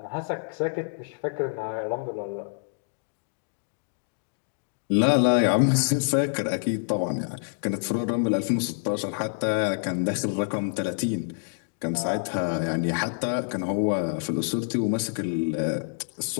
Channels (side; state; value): right; silent; digital silence